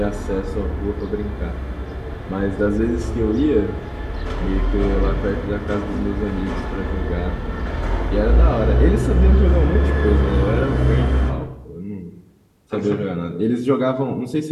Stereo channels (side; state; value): both; identical; correlation 1.00